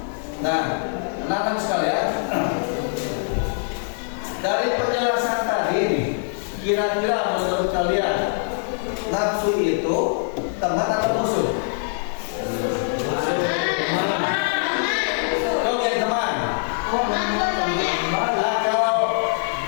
Nah, anak-anak sekalian, dari penjelasan tadi nih, kira-kira menurut kalian nafsu itu teman atau musuh? Oke, teman. Nah, kalau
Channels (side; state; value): right; silent; digital silence